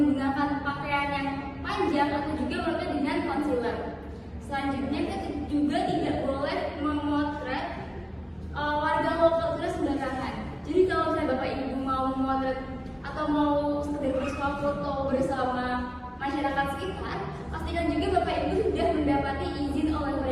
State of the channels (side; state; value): both; identical; correlation 1.00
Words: pakaian yang panjang atau juga melakukan dengan concealer. Selanjutnya kita juga tidak boleh memotret warga lokal kita sembarangan. Jadi kalau misalnya Bapak Ibu mau memotret atau mau sekedar bersuah foto bersama masyarakat sekitar, pastikan juga Bapak Ibu sudah mendapati izin oleh